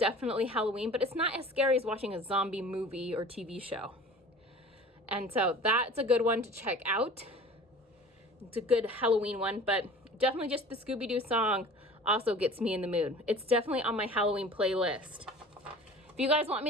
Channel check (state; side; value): normal; both; correlation 0.43